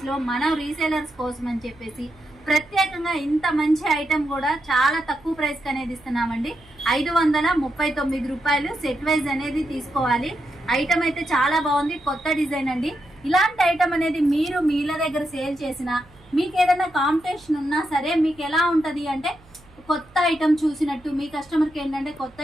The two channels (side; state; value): right; noise; hum, 27 dB below the sound